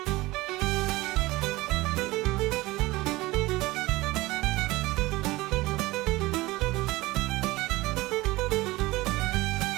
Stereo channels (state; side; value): quieter; left; 20.1 dB